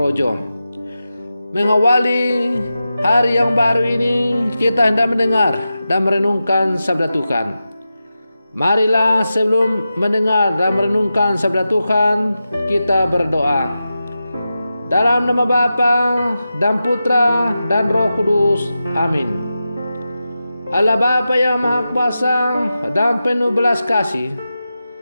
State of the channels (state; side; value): inverted; both; correlation -0.92